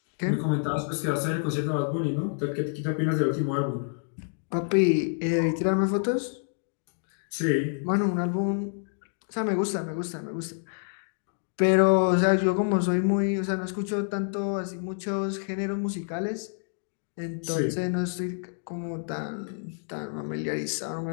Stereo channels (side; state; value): right; silent; 59 dB below the other